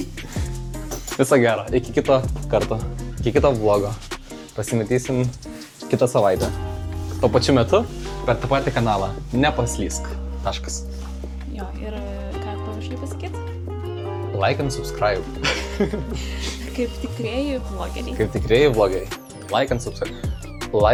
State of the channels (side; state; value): both; identical; correlation 1.00